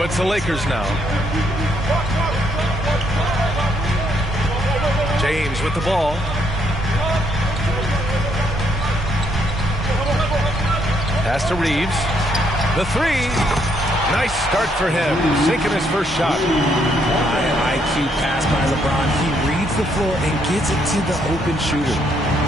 it's the Lakers now. James with the ball. Pass to Reeves. The three. Nice start for him. Sinking his first shot. High IQ pass by LeBron. He reads the floor and gets it to the open shooter.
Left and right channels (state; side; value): normal; both; correlation 0.72